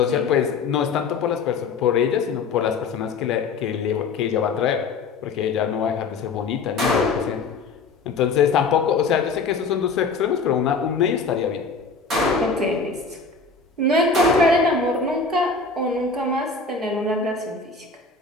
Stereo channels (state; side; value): quieter; right; 4.4 dB